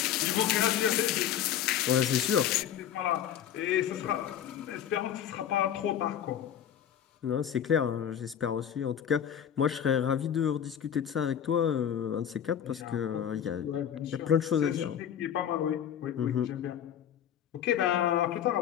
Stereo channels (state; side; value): quieter; right; 9.5 dB